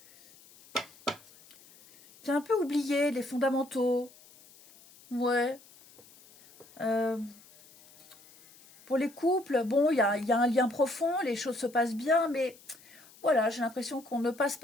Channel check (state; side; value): noise; left; hiss, 25 dB below the sound